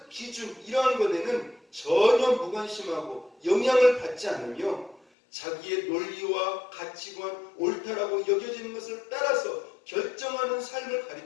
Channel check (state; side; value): drops out; right; at 5.0 s